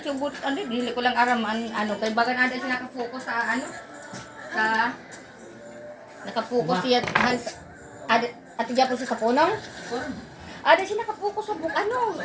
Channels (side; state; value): both; identical; correlation 1.00